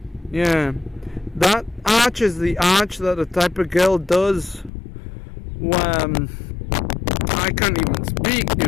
Yeah. That arch is the arch that the type of girl does. I can't even speak,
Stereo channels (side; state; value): right; drops out; at 4.7 s